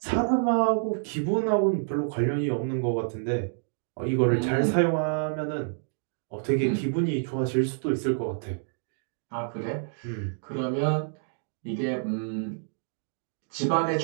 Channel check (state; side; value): silent; left; digital silence